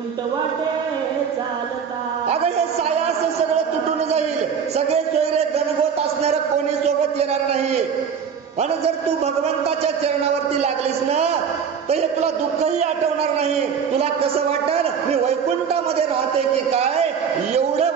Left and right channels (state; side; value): quieter; left; 7.0 dB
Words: वाटे चालता. अगं हे सायास सगळं तुटून जाईल, सगळे सोयरे गणगोत असणार, कोणी सोबत येणार नाही. आणि जर तू भगवंताच्या चरणावरती लागलीस ना तर हे तुला दुःखही आठवणार नाही. तुला कसं वाटल, मी वैकुंठामध्ये राहते की काय, एवढं